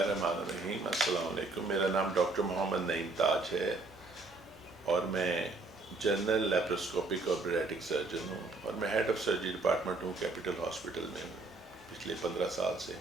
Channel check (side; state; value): left; quieter; 3.4 dB